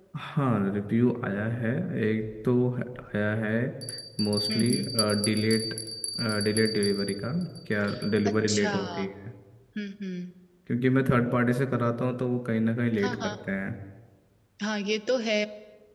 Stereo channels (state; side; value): identical; both; correlation 1.00